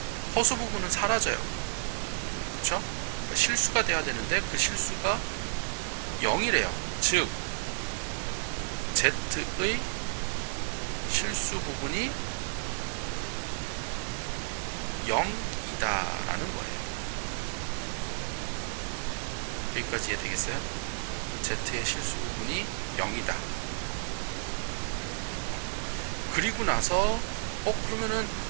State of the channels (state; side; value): silent; left; 57 dB below the other